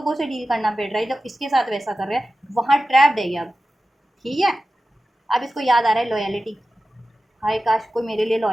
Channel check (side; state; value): both; normal; correlation 0.94